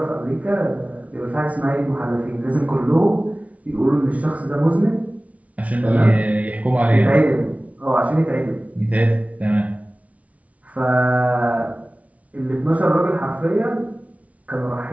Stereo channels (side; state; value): left; late; 0.067 ms